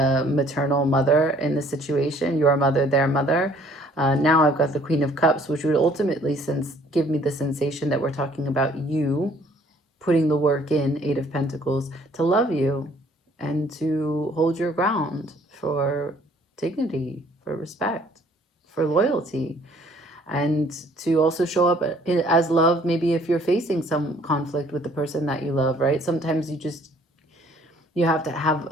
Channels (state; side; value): normal; both; correlation 0.59